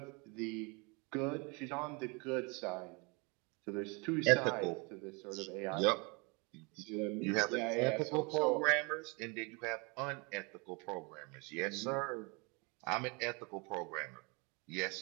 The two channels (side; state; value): left; quieter; 30.4 dB